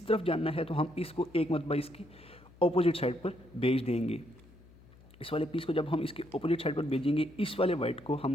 तरफ जाना है तो हम इसको एक मरतबा इसकी अपोजिट साइड पर भेज देंगे। इस वाले पीस को जब हम इसके अपोजिट साइड पर भेजेंगे, इस वाले वाइट को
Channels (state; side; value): noise; left; hum, 24 dB below the sound